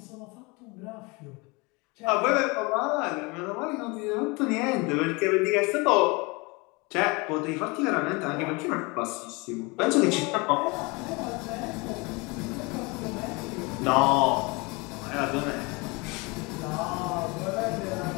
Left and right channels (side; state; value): right; quieter; 27.1 dB